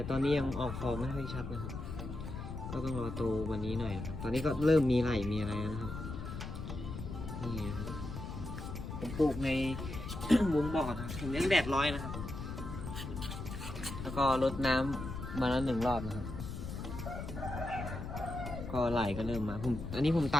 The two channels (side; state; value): left; noise; rumble, 7 dB below the sound